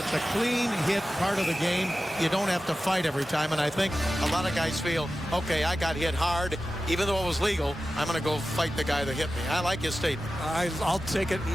a clean hit part of the game, you don't have to fight every time. And I think a lot of guys feel, okay, I got hit hard. Even though it was legal, I'm going to go fight the guy that hit me. I like his statement. I'll take it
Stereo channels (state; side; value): normal; both; correlation 0.94